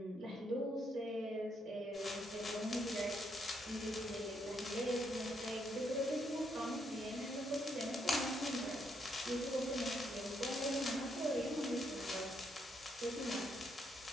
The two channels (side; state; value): both; normal; correlation 0.76